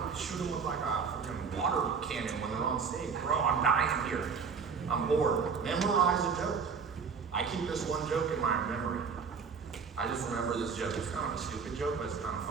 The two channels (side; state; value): left; quieter; 5.8 dB